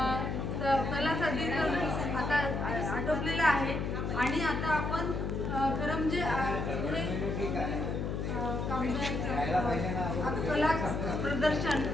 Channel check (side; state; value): left; noise; hum, 2 dB below the sound